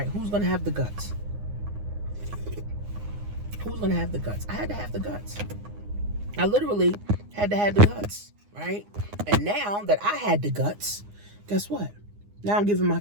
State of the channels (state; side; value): late; left; 9.7 ms